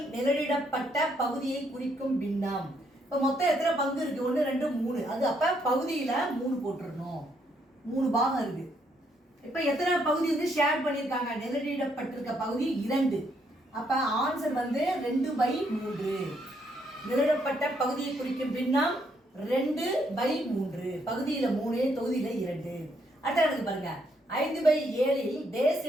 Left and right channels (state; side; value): normal; both; correlation 0.73